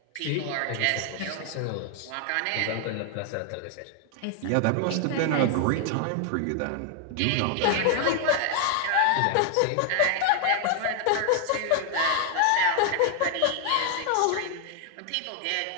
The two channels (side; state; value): both; different; correlation 0.00